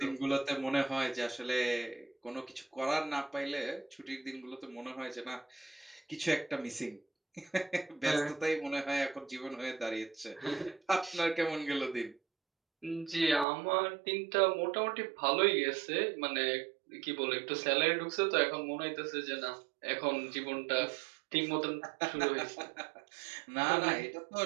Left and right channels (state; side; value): drops out; left; at 13.5 s